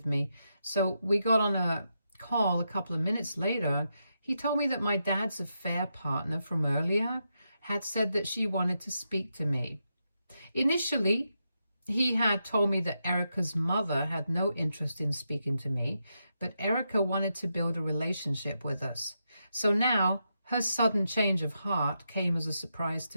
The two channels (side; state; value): both; inverted; correlation -0.84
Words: me. So we got on a call a couple of minutes later. He told me that my dad's affair partner from earlier had said that she wanted to speak to me. Initially, he had told me that Erica's mother had no interest in speaking to me, but Erica wanted to build a relationship with us. So now, her sudden change of heart came as a surprise